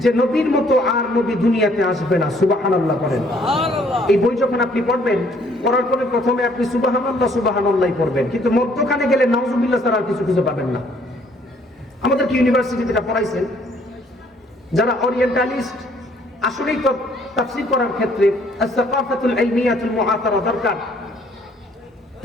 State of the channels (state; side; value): normal; both; correlation 0.63